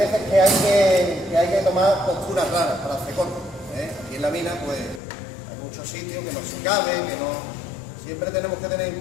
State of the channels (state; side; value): drops out; right; at 5.0 s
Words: que hay que tomar posturas raras para hacer corte. Aquí en la mina pues hay muchos sitios que no se caben, que no. Siempre tenemos que tener en